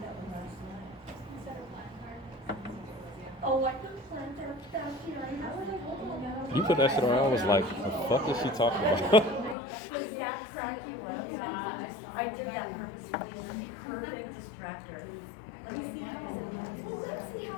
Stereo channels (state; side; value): drops out; right; at 9.6 s